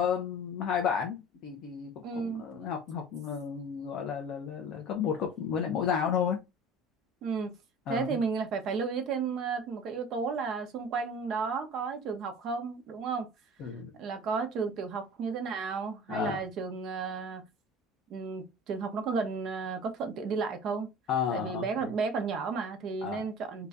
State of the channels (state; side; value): normal; both; correlation 0.40